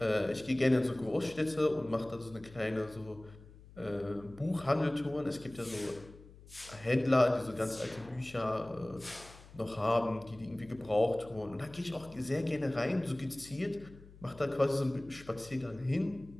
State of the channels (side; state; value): left; noise; hum, 20 dB below the sound